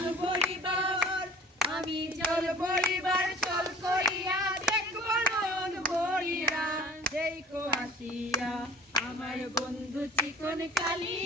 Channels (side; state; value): both; normal; correlation 0.48